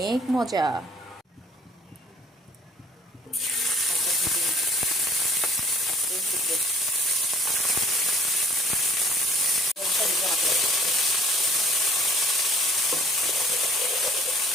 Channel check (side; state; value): both; normal; correlation 0.54